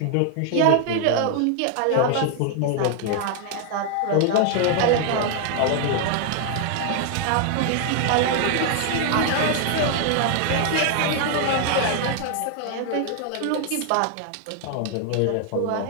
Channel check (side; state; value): both; different; correlation 0.00